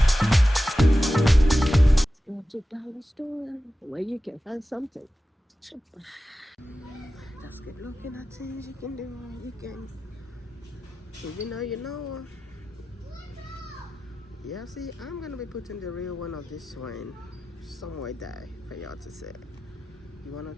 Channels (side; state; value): both; normal; correlation 0.94